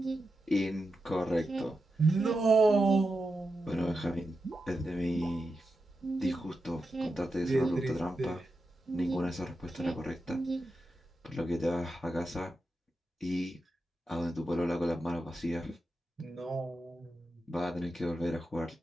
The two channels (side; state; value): both; normal; correlation 0.89